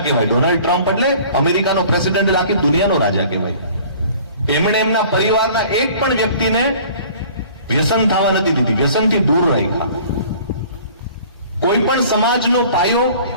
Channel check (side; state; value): both; inverted; correlation -0.49